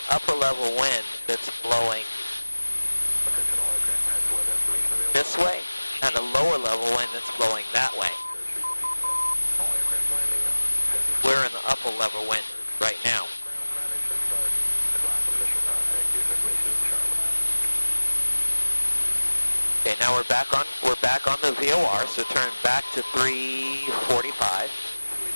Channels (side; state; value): both; inverted; correlation -1.00